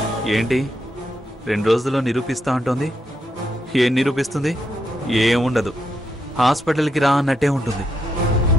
ఏంటి 2 రోజుల్లో నిరూపిస్తా అంటోంది? ఏం నిరూపిస్తుంది? ఏముండదు. హాస్పిటల్కి రా అన్నట్టే ఉంటుంది.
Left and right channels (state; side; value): normal; both; correlation 0.81